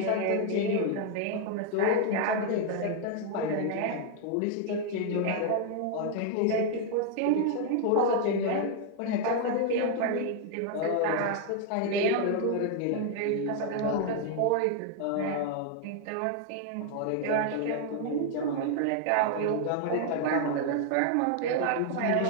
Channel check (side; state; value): both; different; correlation 0.00